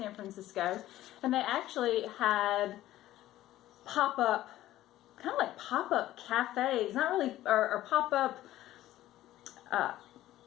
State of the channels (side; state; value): right; quieter; 14.4 dB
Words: Francisco. And they actually had pop-up, kind of like pop-up cafes, not really, or pop-up